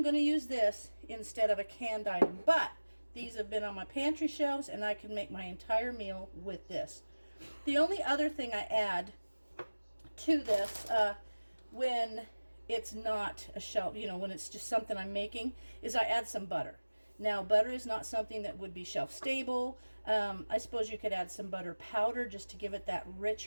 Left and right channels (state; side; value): inverted; both; correlation -1.00